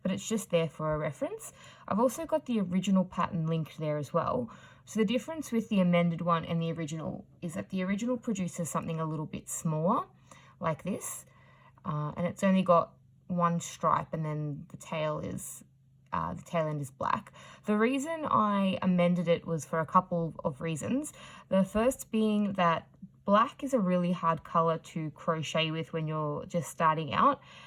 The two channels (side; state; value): both; identical; correlation 1.00